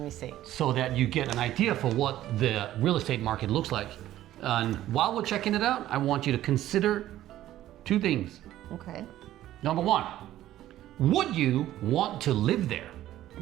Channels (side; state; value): left; quieter; 13.6 dB